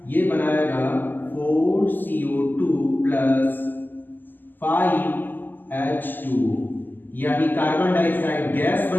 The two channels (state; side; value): late; right; 0.090 ms